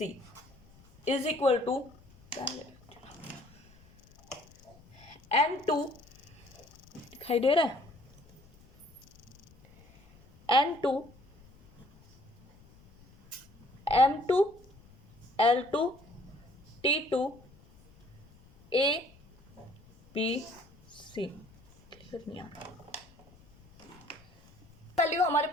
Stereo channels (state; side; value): noise; left; rumble, 26 dB below the sound